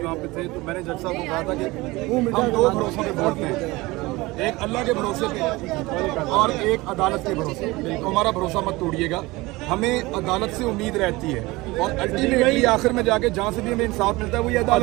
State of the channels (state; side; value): quieter; left; 21.4 dB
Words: वहाँ पे थे, तो मैंने जज साहब को कहा था कि हम दो भरोसों पे बोलते हैं, एक अल्लाह के भरोसे पे और एक अदालत के भरोसे पे। तो हमारा भरोसा मत तोड़िएगा, हमें अदालत से उम्मीद रहती है और अल्टीमेटली आखिर में जाके जहाँ से भी हमें इंसाफ मिलता है वो ये